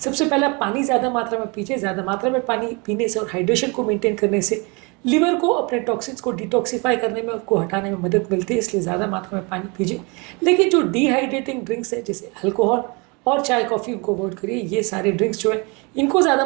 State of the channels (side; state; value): left; quieter; 29.7 dB